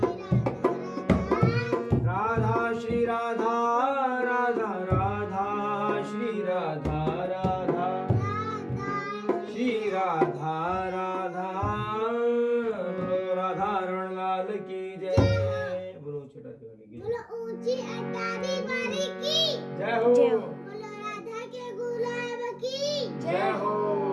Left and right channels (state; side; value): identical; both; correlation 1.00